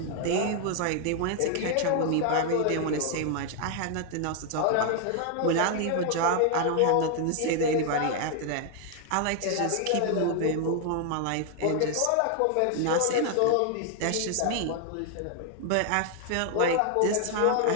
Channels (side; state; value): both; different; correlation 0.00